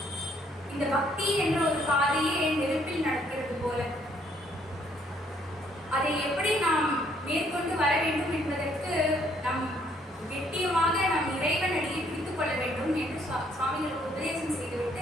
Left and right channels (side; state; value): both; normal; correlation 0.67